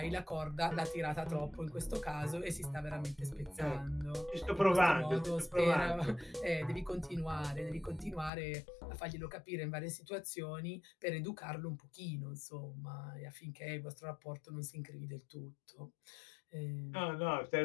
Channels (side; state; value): right; drops out; at 8.3 s